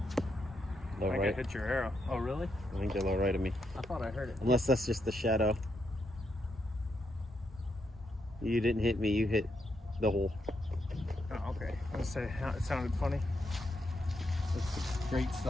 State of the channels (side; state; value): both; normal; correlation 0.81